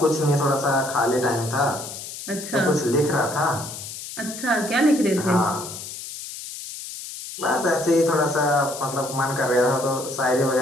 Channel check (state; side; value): noise; left; hiss, 10 dB below the sound